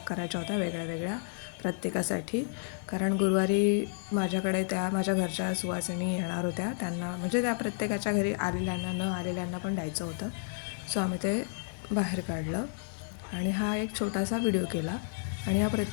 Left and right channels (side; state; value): right; silent; digital silence